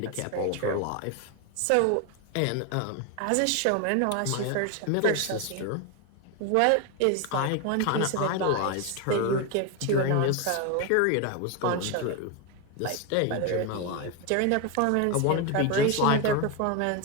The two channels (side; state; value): both; different; correlation 0.02